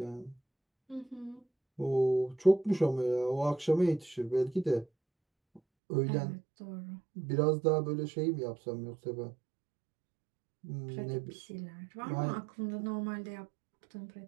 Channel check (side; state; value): left; drops out; at 5.6 s